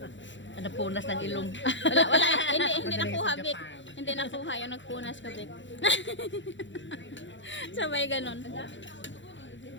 Napunas ng ilong. Wala. Hindi nakuha, Vic. Hindi nakuha yung nagpunas ka, Vic. Sabay ganon.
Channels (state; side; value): late; right; 0.54 ms